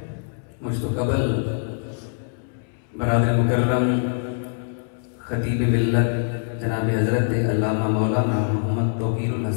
مجھ تو قبل برادر مکرم خطیب ملت جناب حضرت علامہ مولانا محمد توقیر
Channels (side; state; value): right; silent; 63 dB below the other